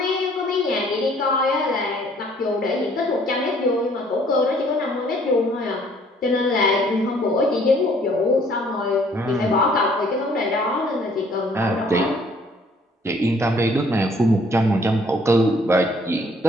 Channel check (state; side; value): normal; both; correlation 0.60